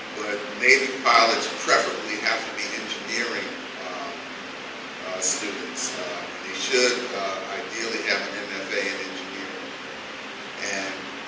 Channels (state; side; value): identical; both; correlation 1.00